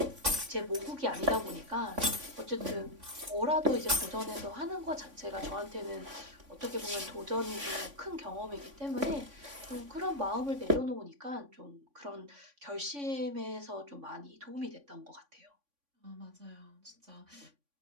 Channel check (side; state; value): left; late; 3.5 ms